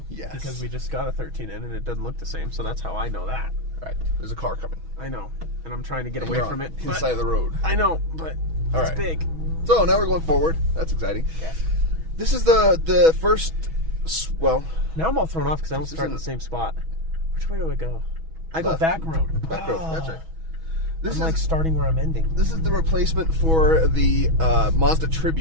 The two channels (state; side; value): late; left; 6.2 ms